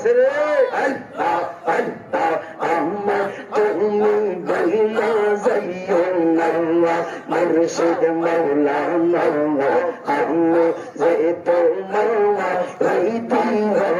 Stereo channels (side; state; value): both; identical; correlation 1.00